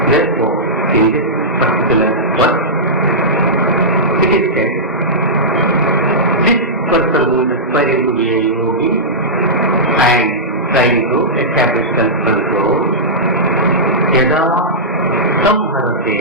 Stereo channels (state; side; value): normal; both; correlation -0.13